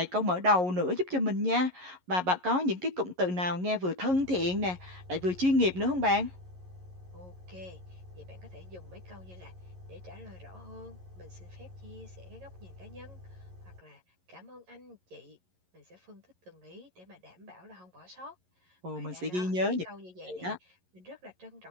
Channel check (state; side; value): late; left; 11 ms